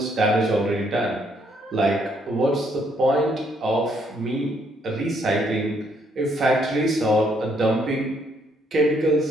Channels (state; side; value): normal; both; correlation 0.70